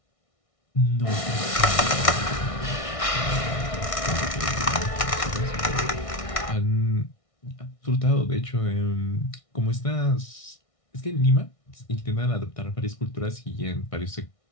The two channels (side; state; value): right; late; 1.6 ms